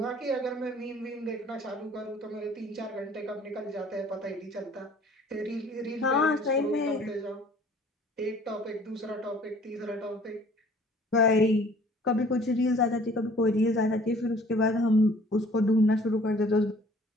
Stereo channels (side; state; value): both; normal; correlation 0.53